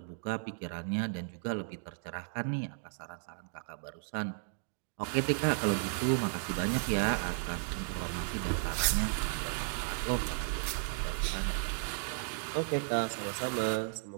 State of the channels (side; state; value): left; silent; digital silence